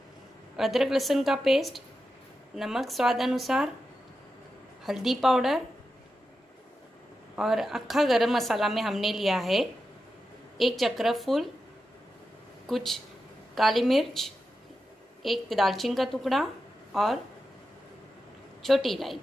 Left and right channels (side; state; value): both; normal; correlation 0.90